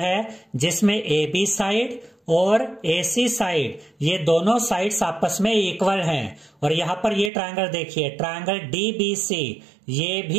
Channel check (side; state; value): left; drops out; at 7.3 s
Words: है जिसमें AB साइड और AC साइड ये दोनों साइड्स आपस में इक्वल हैं। और यहाँ पर ये ट्रायंगल देखिए ट्रायंगल DBC ये